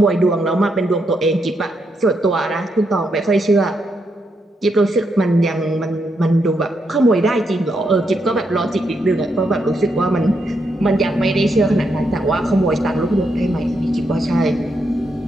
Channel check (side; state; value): both; normal; correlation 0.80